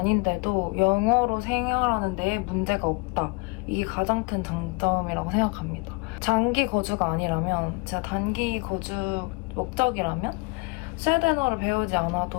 영어로 생활하는 데에 문제가 없다. 이게 가장 큰 장점이라고 생각합니다. 장기 거주가 아니라면, 제가 단기 거주 목적이라면 스웨덴어를 배우지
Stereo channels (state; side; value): quieter; right; 28.4 dB